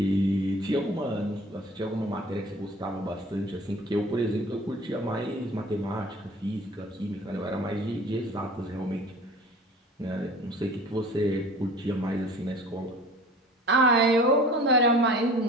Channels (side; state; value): both; normal; correlation 0.44